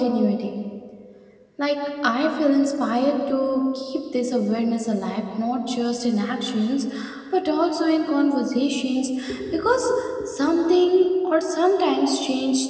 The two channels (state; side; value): identical; both; correlation 1.00